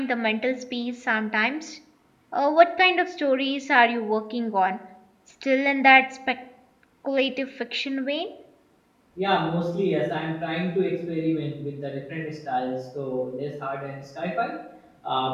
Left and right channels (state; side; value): identical; both; correlation 1.00